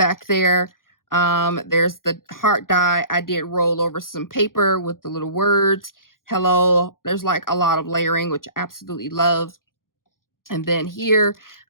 there. There's the heart die. I did roll over some paper with the little words. Hello. There's like a lot of layering, which I absolutely love. And then here,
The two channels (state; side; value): late; right; 0.91 ms